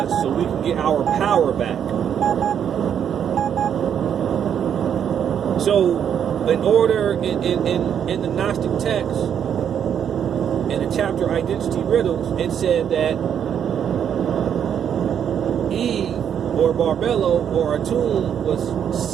so we can get our power back. So, in order, in the Gnostic text, in the chapter Identity Riddles, it said that Eve, or Barbello, or Atum, was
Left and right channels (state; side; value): quieter; left; 8.6 dB